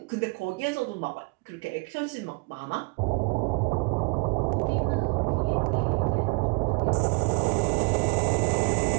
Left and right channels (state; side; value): quieter; left; 30.7 dB